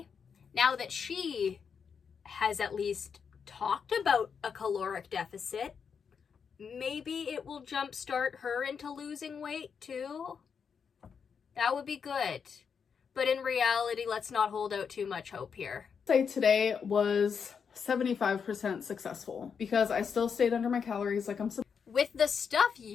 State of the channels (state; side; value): quieter; right; 6.5 dB